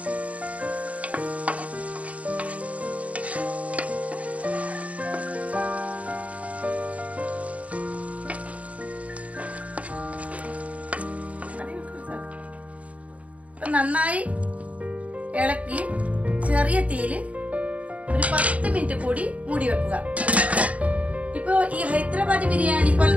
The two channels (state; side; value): late; left; 0.066 ms